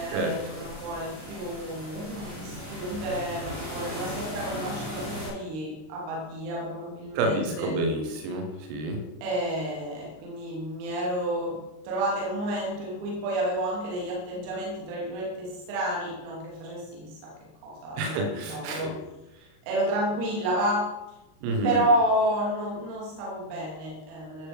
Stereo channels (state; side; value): late; left; 39 ms